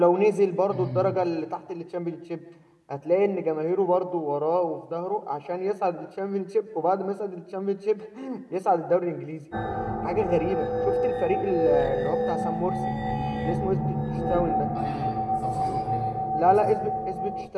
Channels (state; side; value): identical; both; correlation 1.00